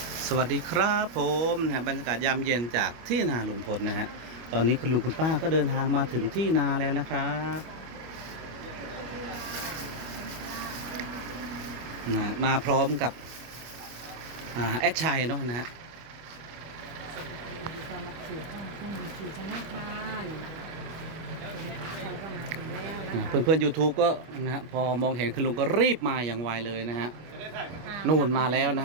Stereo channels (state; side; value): late; left; 25 ms